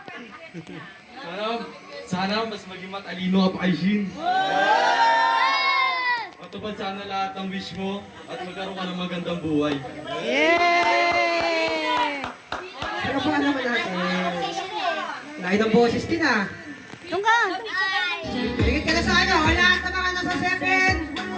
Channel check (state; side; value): identical; both; correlation 1.00